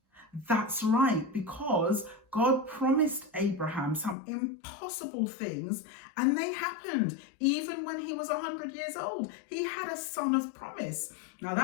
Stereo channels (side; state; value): right; drops out; at 4.2 s